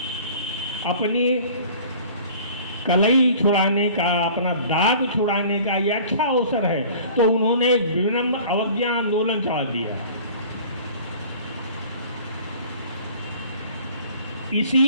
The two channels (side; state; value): both; inverted; correlation -0.47